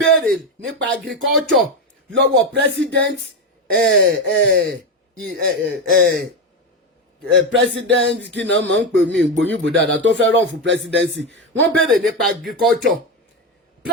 nípa agriculture lọ́wọ́ president president kí náà máa ń pè mí gbòyìnbó dáadáa tó fẹ́ run fún presidency, wọ́n béèrè nípa agriculture.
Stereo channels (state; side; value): normal; both; correlation 0.12